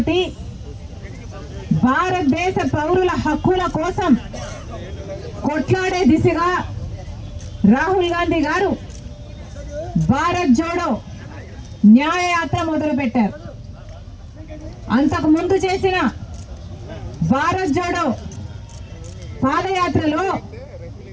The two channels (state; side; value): identical; both; correlation 1.00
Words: భారతదేశ పౌరుల హక్కుల కోసం కొట్లాడే దిశగా రాహుల్ గాంధీ గారు భారత్ జోడో న్యాయ యాత్ర మొదలుపెట్టారు. అంతకు ముందు చేసిన భారత్ జోడో పాదయాత్రలో